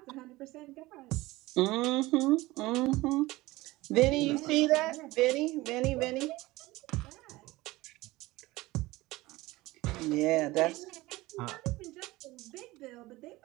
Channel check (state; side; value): quieter; left; 19.6 dB